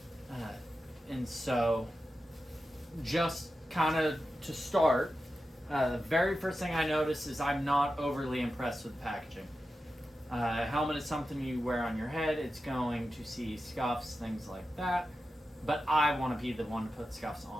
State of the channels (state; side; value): normal; both; correlation 0.91